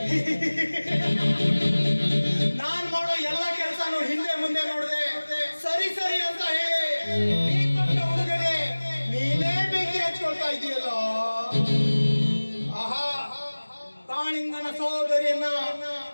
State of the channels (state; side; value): inverted; both; correlation -1.00